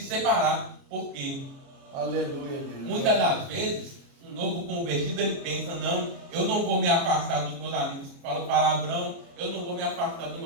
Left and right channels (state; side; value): late; left; 29 ms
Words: separar, porque aleluia, Deus. Muitas das vezes um novo convertido ele pensa: não, eu não vou me afastar dos meus amigos que falam palavrão, eu não vou me afastar dos